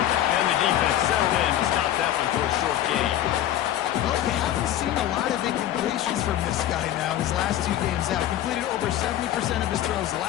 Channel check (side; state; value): right; quieter; 12.3 dB